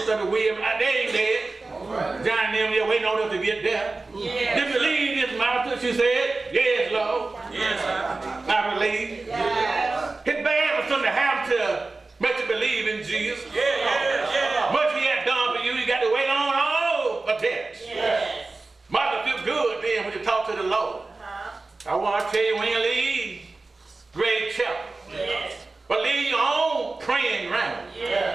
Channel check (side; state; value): left; quieter; 3.5 dB